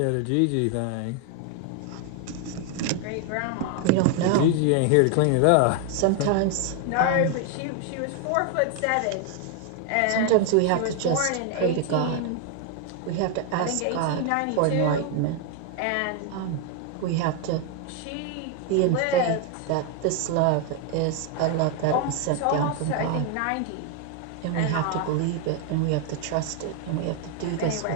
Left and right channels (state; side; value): different; both; correlation 0.00